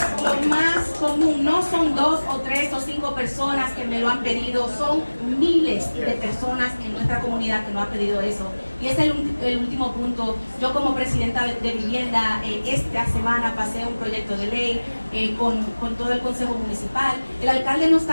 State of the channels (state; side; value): inverted; both; correlation -1.00